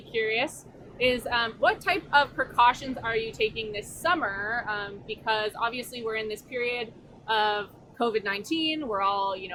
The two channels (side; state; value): both; identical; correlation 1.00